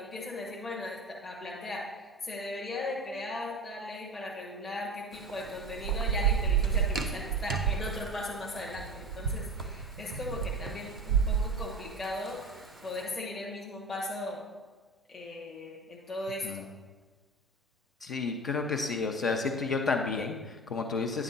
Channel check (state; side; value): normal; both; correlation 0.31